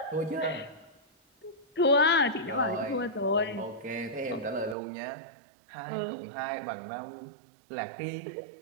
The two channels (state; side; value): drops out; left; at 4.8 s